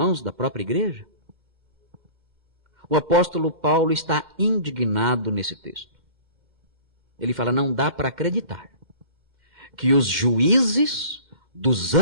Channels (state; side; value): late; left; 2.1 ms